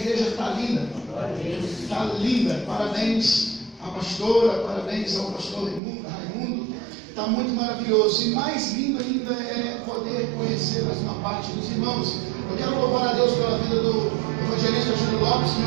está linda. Está linda. Parabéns à pastora, parabéns ao pastor Raimundo. Está muito maravilhoso. E mais lindo ainda é poder conhecer mais uma parte dos irmãos. Eu quero louvar a Deus pela vida do evangelista Júlio Lopes,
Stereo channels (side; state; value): left; drops out; at 5.8 s